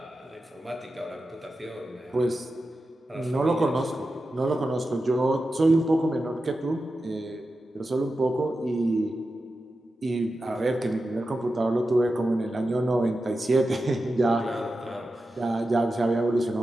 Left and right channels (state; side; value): normal; both; correlation 0.91